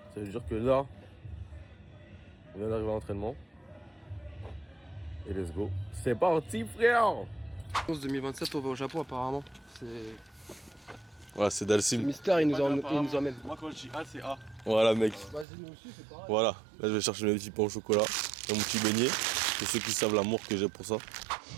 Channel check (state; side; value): drops out; left; at 15.5 s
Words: Ça veut dire que là, on vient d'arriver à l'entraînement. Et let's go. C'est parti frère. 2027 on va au Japon apparemment. C'est... Voilà, c'est Dalsim. Mystère il nous emmène. Moi quand je dis A c'est A. Voilà mec. Vas-y nous aussi c'est pareil. Voilà, là je vais chercher mes petits pains au chocolat et mon petit beignet. Pour ceux qui savent l'amour que j'ai pour ça.